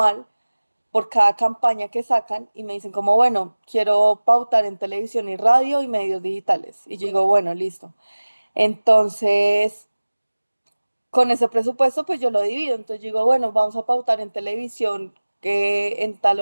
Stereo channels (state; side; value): inverted; both; correlation -1.00